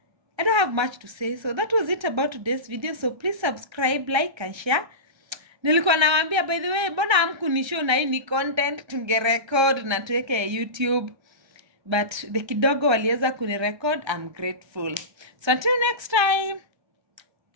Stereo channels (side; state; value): left; late; 1.3 ms